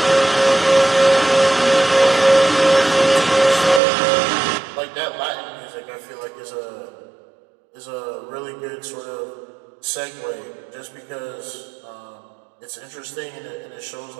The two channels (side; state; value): left; drops out; at 3.8 s